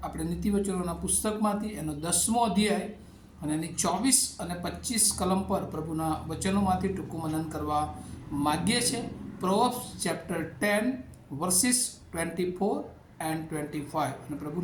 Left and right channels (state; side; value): identical; both; correlation 1.00